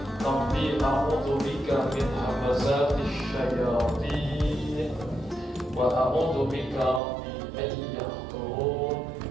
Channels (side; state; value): left; drops out; at 7.0 s